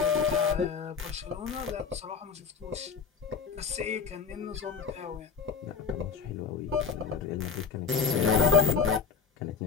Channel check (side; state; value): right; quieter; 6.1 dB